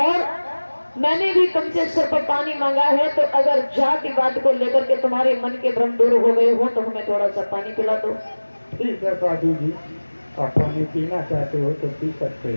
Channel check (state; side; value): inverted; both; correlation -1.00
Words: मैंने भी तुमसे सिर्फ पानी मांगा है, तो अगर जातिवाद को लेकर के तुम्हारे मन के भ्रम दूर हो गए हो तो हमें थोड़ा सा पानी पिला दो। ठीक है साधु जी, आप पानी पीना चाहते हो तो पी सकते